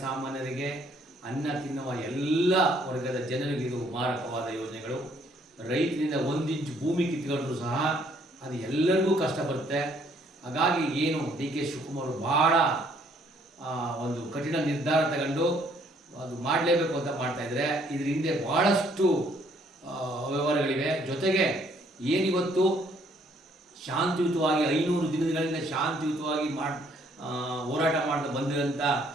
ಅನ್ನ ತಿನ್ನುವ ಎಲ್ಲ ವರ್ಗದ ಜನರಿಗೆ ಇದು ಮಾರಕವಾದ ಯೋಜನೆಗಳು. ರೈತರಿಂದ 1 ಇಂಚು ಭೂಮಿ ಕಿತ್ಕೊಂಡ್ರೂ ಸಹ ಅದು ಎಲ್ಲರಿಗೂ ಕಷ್ಟ ಬರುತ್ತೆ. ಹಾಗಾಗಿ ಏನು ಡಿ ಕೆ ಶಿವಕುಮಾರ್ ಭಾಳ ಒಂದು ಕಠಿಣ ನಿರ್ಧಾರ ತಗೊಂಡು ಅದು ಮಾಡಲೇಬೇಕು ಅಂತ ಮಾಡ್ತಾಯಿದ್ರೆ, ಇದ್ರ ಹಿಂದೆ ಭಾಳಷ್ಟು ವ್ಯವಹಾರಗಳಿವೆ. ಜೊತೆಗೆ ಏನಿವತ್ತು ಶಾಂತಿಯುತವಾಗಿ 500 ದಿನಗಳಿಂದ ಶಾಂತಿಯುತವಾಗಿ ಹೋರಾಟ ಮಾಡ್ತಾ ಬಂದಿರೋಂಥ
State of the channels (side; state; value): both; normal; correlation 0.65